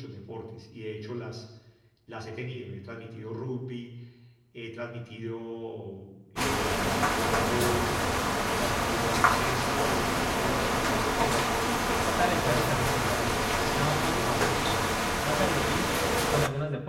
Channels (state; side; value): identical; both; correlation 1.00